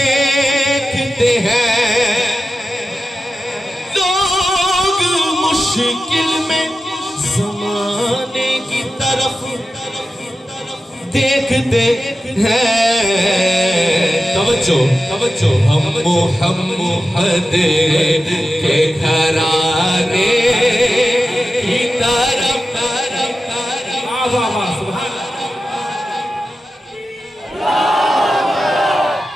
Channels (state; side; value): normal; both; correlation 0.93